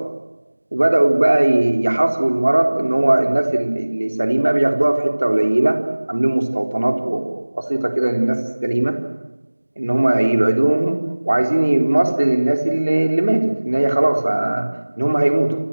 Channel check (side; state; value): both; inverted; correlation -1.00